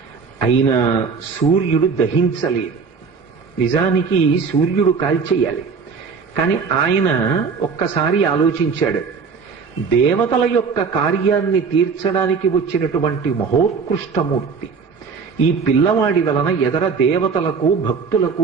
అయినా సూర్యుడు దహించలేదు. నిజానికి సూర్యుడు కాల్చేయాలి. కానీ ఆయన ఒక్కసారి ఆలోచించాడు. దేవతల యొక్క కార్యాన్ని తీర్చడానికి వచ్చినటువంటి మహోత్కృష్టమూర్తి ఈ పిల్లవాడి వలన ఎదర దేవతలకు,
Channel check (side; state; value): left; quieter; 5.4 dB